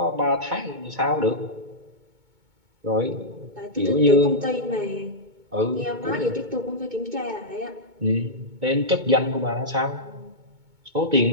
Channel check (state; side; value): late; left; 2.2 ms